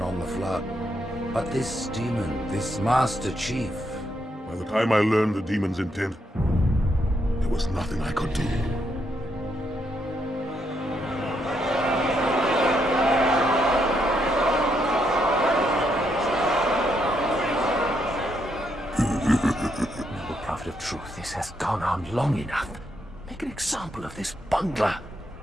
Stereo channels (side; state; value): both; normal; correlation 0.78